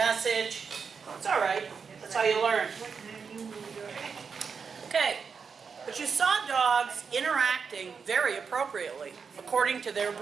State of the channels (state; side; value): quieter; left; 5.8 dB